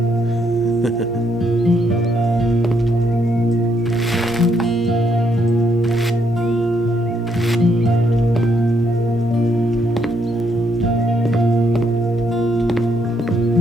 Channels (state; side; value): normal; both; correlation 0.74